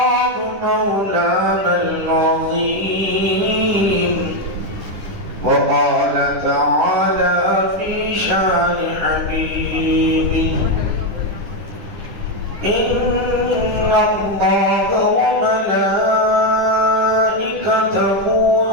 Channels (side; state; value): left; late; 9.9 ms